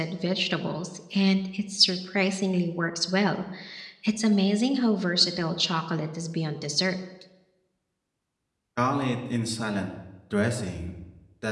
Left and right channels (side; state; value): both; identical; correlation 1.00